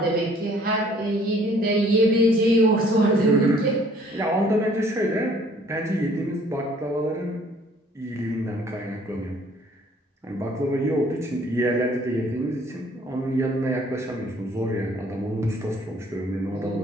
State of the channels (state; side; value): normal; both; correlation 0.58